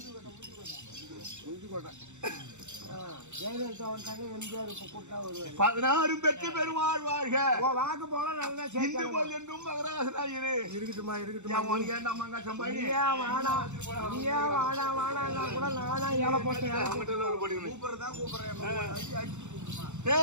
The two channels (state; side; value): late; left; 0.83 ms